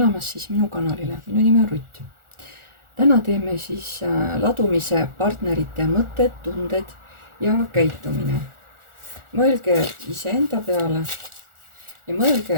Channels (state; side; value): late; left; 1.4 ms